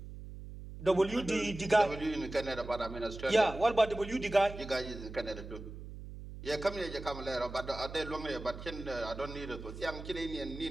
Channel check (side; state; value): right; noise; hum, 12 dB below the sound